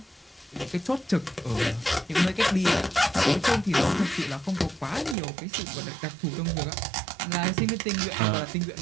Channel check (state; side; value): drops out; left; at 5.2 s